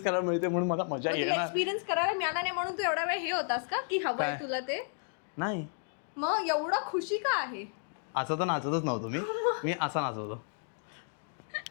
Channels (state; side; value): silent; right; 56 dB below the other